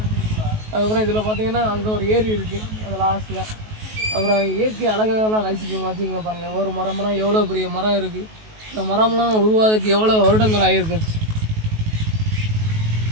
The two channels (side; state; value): left; late; 19 ms